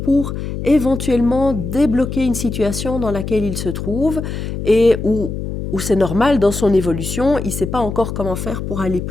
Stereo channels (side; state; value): left; noise; hum, 5 dB below the sound